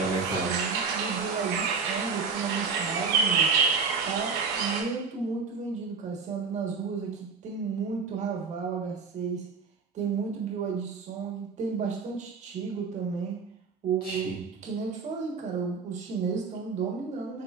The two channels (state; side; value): quieter; left; 5.1 dB